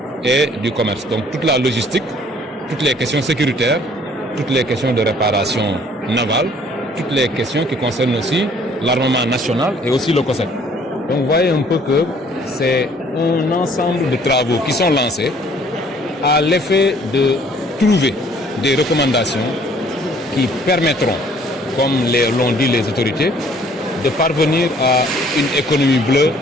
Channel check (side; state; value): both; normal; correlation 0.58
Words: et du commerce. Donc toute la logistique, toutes les questions sécuritaires, toutes les questions de réparation navale, toutes les questions qui concernent aussi l'armement national et aussi le COSEC. Donc vous voyez un peu que c'est un ensemble de travaux qui sont lancés à l'effet de trouver des recommandations qui permettront, comme l'ont dit les autorités, de parvenir à une économie bleue